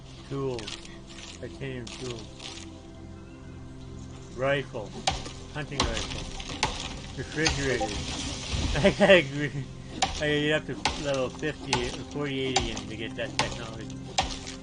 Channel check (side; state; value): both; identical; correlation 1.00